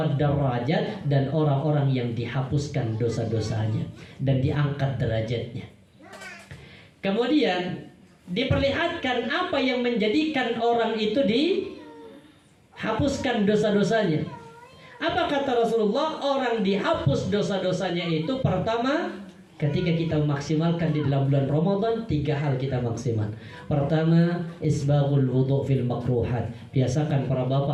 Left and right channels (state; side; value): identical; both; correlation 1.00